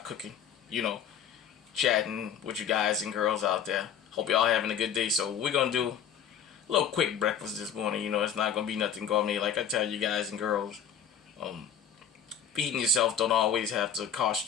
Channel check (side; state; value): right; quieter; 7.8 dB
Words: cooking, chatting with you guys and girls out there. Hope y'all having a good day. So we're gonna do a little quick breakfast this morning. It's not gonna be nothing gourmet. Like I tell you guys and girls, feeding yourself don't always have to